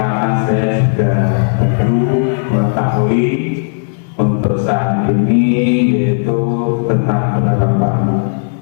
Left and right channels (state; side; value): silent; right; 71 dB below the other